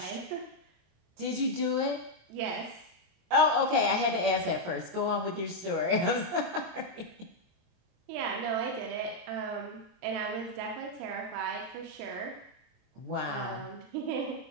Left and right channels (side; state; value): left; late; 23 ms